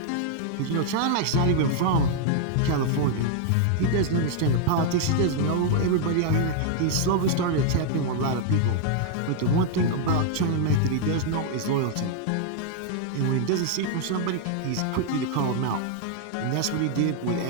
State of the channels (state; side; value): different; both; correlation 0.00